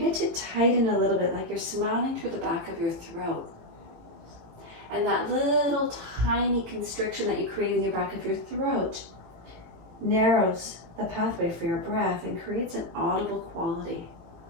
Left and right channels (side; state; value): left; late; 18 ms